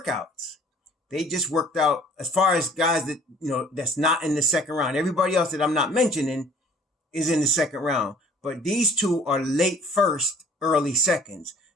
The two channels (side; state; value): both; normal; correlation 0.54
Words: they just worked out as far as guys that, that's not in the second round. Everybody else that I'm not mentioning is in the second round. But these two are late first, early seconds.